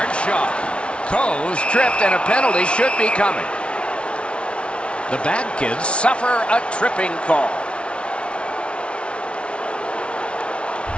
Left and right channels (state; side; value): late; right; 0.059 ms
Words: shot. Coe's tripped, and a penalty should be coming. The bad kids suffer a tripping call.